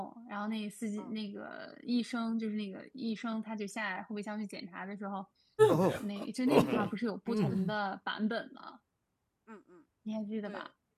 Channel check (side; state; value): both; identical; correlation 1.00